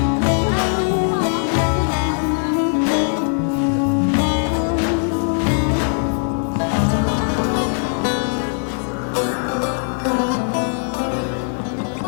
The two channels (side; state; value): right; silent; 66 dB below the other